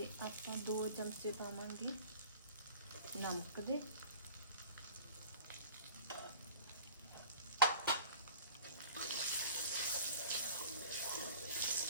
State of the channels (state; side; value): inverted; both; correlation -0.43